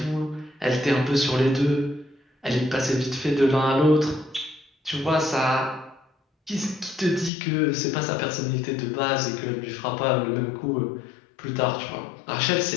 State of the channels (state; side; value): drops out; right; at 7.3 s